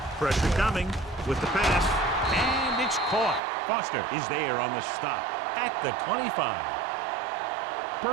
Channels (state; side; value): drops out; left; at 3.4 s